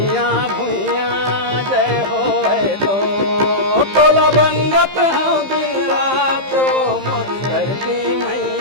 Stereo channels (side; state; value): left; late; 15 ms